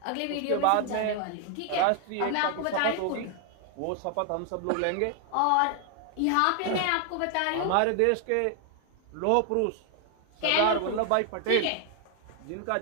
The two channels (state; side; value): different; both; correlation 0.00